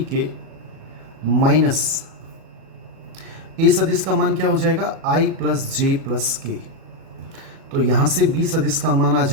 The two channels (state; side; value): late; left; 37 ms